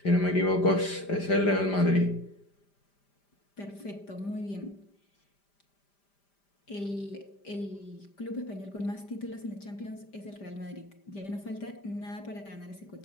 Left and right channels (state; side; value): late; right; 5.0 ms